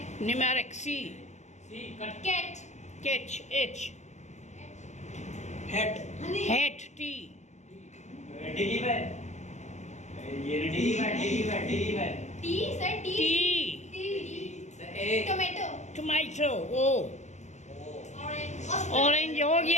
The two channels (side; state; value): right; late; 0.34 ms